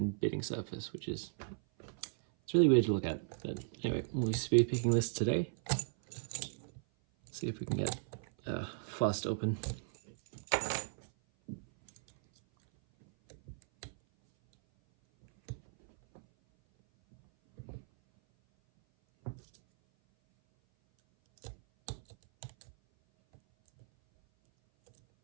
bitting surface, which is, it's really weird to look at. But anyway, we'll be speed picking this today. See if we can get fast open.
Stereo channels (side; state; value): left; silent; 54 dB below the other